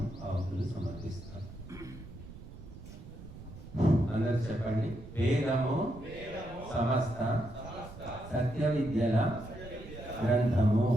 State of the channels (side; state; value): right; noise; rumble, 15 dB below the sound